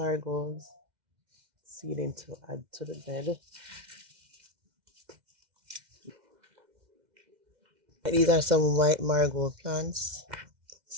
seedling to add to the bed. These are some white marigold plants,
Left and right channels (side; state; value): left; late; 2.1 ms